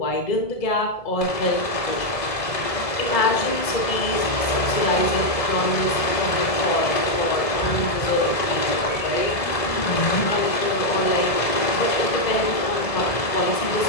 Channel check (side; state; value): right; late; 1.7 ms